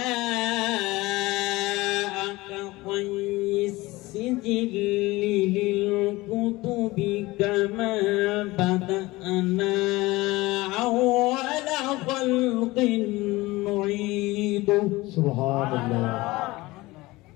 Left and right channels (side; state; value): right; quieter; 20.4 dB